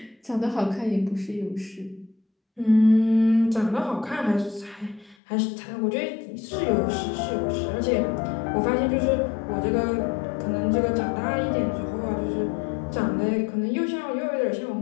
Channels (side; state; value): right; drops out; at 5.2 s